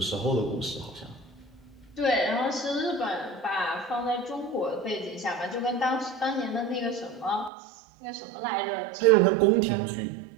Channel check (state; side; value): drops out; left; at 7.5 s